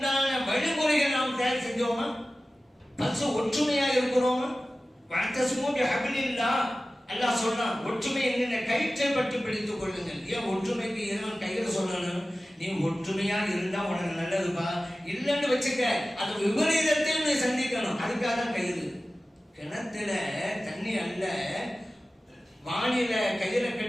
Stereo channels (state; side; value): normal; both; correlation 0.96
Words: வழிமுறைகள் நாம் தயார் செஞ்சோமா? பசு ஒற்றுமையா இருக்கிறோமா? அல்லாஹ் சொல்றான், ஒற்றுமை என்ன கயிற்றை பற்றி பிடித்துக் கொள்ளுங்கள். ஏன் ஒற்றுமைக்கு இறைவன் கையில சொல்லணும்? நீ ஒற்றுமையா இருந்தா உனக்கு நல்லதுப்பா. இல்லைன்னு வச்சுக்க, அது விபரீதத்தையும் நீ சந்திக்கணும். அதுக்காக தான் கயிறு. கிணத்துல தண்ணி அல்ல, வானில கயிறை